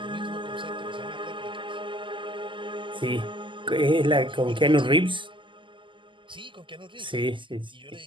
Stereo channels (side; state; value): left; late; 0.24 ms